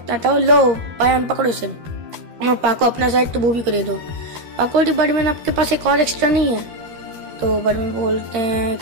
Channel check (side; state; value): left; late; 13 ms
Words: आता हो, लो पायान पकड़ो से, और पाको अपना साइड तो वो भी कर दो। पाको बोलती बर्डमैन आपके पास एक और एक्स्ट्रा नहीं है। तो बर्डमैन बोलते हैं